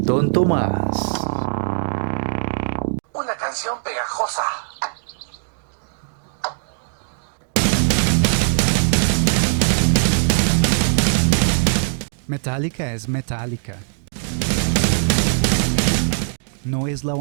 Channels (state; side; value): silent; left; digital silence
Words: tonto más. Una canción pegajosa. Metallica es Metallica. No es la